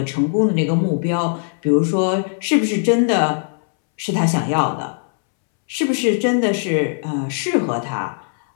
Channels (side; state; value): right; silent; 66 dB below the other